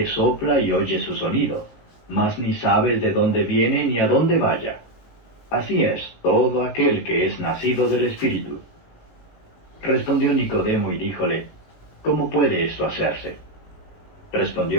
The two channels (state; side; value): late; right; 19 ms